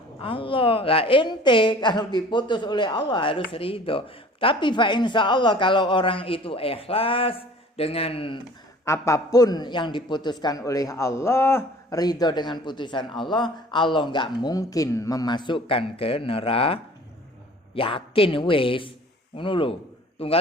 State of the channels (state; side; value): normal; both; correlation 0.48